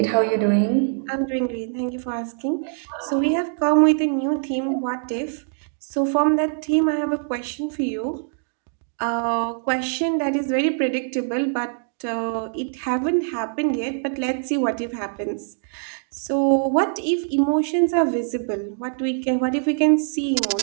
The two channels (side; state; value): left; silent; digital silence